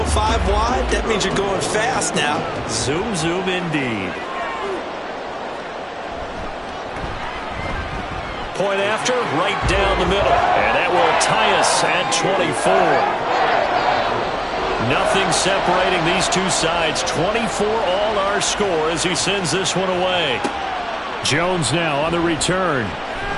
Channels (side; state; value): both; identical; correlation 1.00